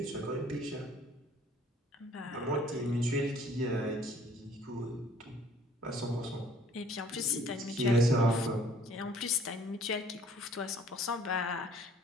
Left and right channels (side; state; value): both; normal; correlation 0.56